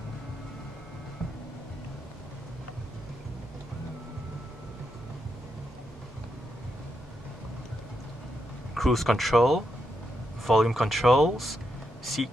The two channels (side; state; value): both; normal; correlation 0.83